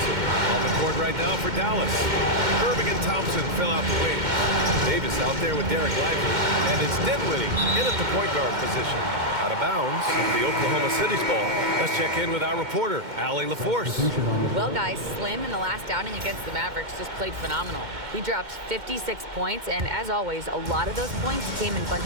On the court right now for Dallas. Irving and Thompson fill out the wing. Davis out there with Derek Lively. And it's Dinwiddie in at the point guard position. Out of bounds, the Oklahoma City's ball. Let's check in with our reporter, Allie LaForce. Well, guys, Slim in the last outing against the Mavericks just played phenomenal. He dropped 56 points, and as always, a lot of those points came in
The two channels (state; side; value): late; left; 2.1 ms